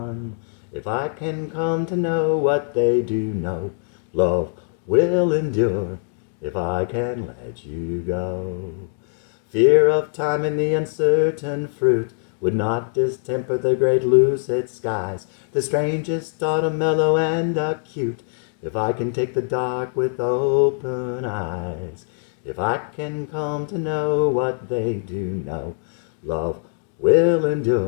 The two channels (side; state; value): right; silent; 64 dB below the other